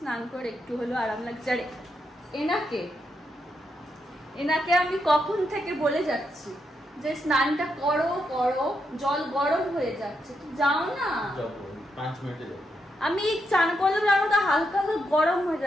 করে একটু হলো আরাম লাগছে। আর এনাকে আমি কখন থেকে বলে যাচ্ছি যে স্নানটা করো করো, জল গরম হয়ে যাচ্ছে, তো যাও না। 5 মিনিটে আমি চান করলাম, আর ওটা হালকা হালকা গরম হয়ে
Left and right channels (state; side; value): normal; both; correlation 0.82